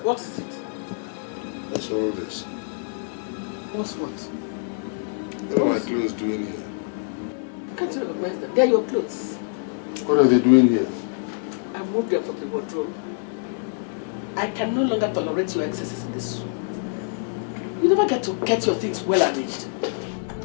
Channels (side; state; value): right; silent; digital silence